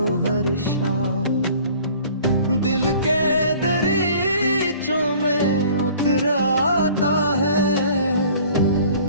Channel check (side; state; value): both; inverted; correlation -0.50